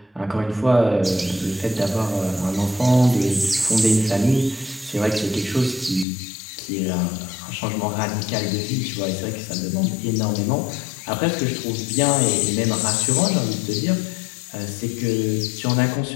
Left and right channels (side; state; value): right; drops out; at 6.1 s